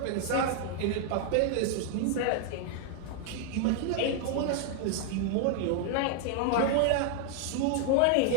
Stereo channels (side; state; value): both; different; correlation 0.00